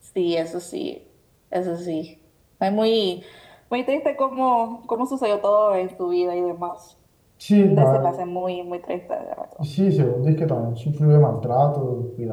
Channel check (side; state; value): both; identical; correlation 1.00